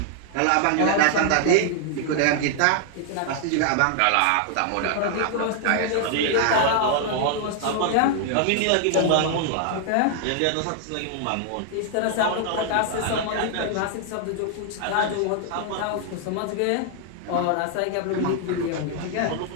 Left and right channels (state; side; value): different; both; correlation 0.00